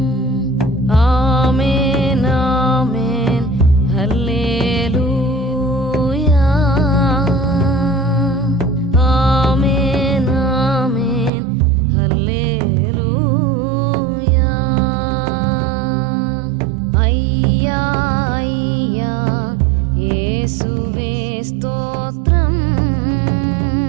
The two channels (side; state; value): left; drops out; at 11.3 s